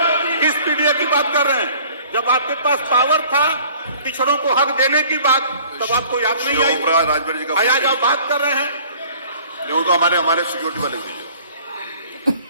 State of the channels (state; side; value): inverted; both; correlation -0.52